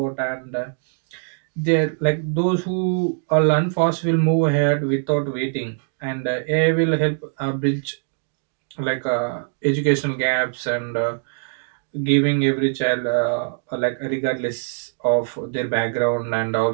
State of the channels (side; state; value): left; silent; digital silence